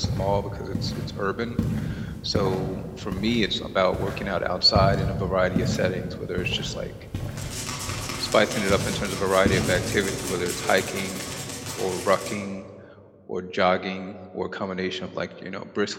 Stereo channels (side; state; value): both; identical; correlation 1.00